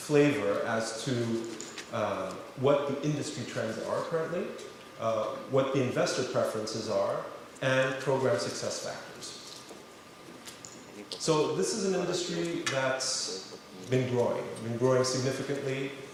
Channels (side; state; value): both; identical; correlation 1.00